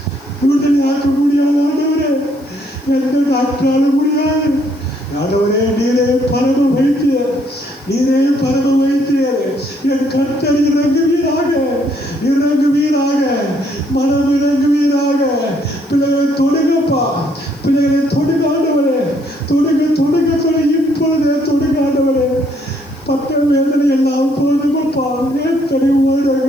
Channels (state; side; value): noise; left; hiss, 28 dB below the sound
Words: விடுதலை ஆக்க முடியாது ஆண்டவரே. எந்த டாக்டராலும் முடியாது ஆண்டவரே. நீரே பரம வைத்தியர், நீரே பரம வைத்தியர். என் கர்த்தர் இறங்குவீராக, இறங்குவீராக, மனம் இறங்குவீராக. பிள்ளைகளை தொடுங்கப்பா, பிள்ளைகளை தொடுங்க ஆண்டவரே, தொடுங்க, தொடுங்க, தொடு, இப்பொழுதே தொடுங்க ஆண்டவரே. பட்ட வேதனை எல்லாம் போதுமப்பா, எத்தனை